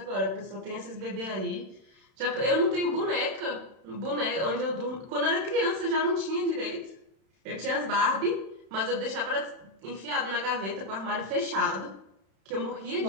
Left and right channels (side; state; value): left; late; 31 ms